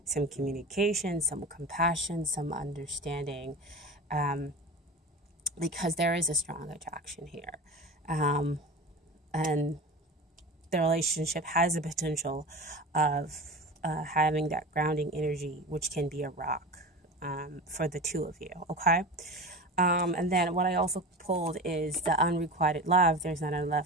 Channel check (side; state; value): both; normal; correlation 0.31